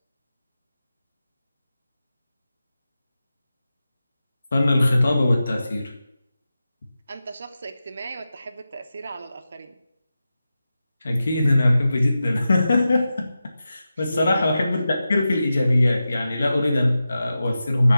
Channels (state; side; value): inverted; both; correlation -0.92